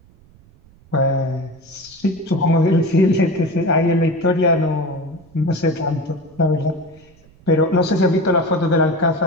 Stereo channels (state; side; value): noise; right; rumble, 27 dB below the sound